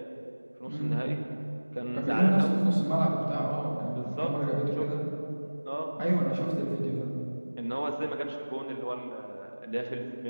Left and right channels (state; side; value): inverted; both; correlation -1.00